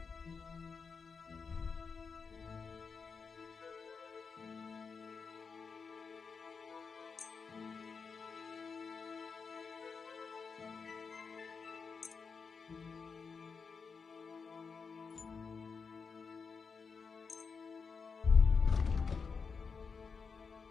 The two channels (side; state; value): right; quieter; 5.3 dB